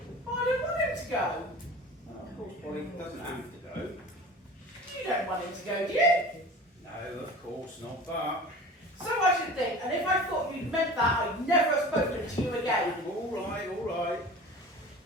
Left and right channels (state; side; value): normal; both; correlation 0.38